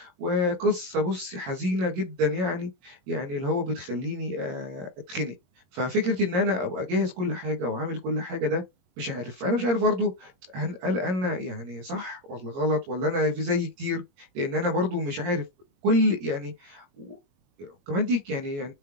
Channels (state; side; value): late; left; 22 ms